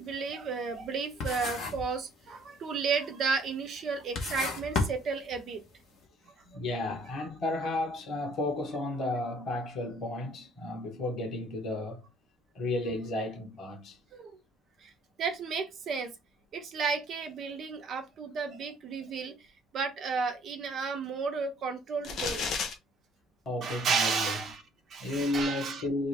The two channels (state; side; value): normal; both; correlation 0.59